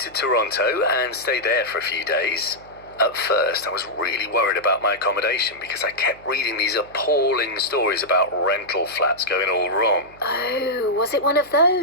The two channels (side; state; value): right; noise; hum, 25 dB below the sound